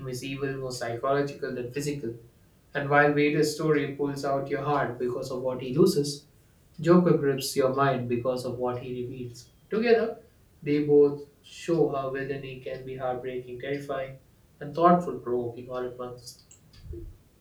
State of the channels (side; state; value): both; identical; correlation 1.00